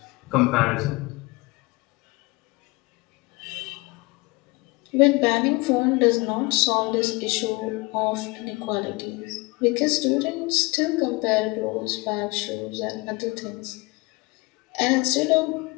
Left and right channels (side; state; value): right; quieter; 24.7 dB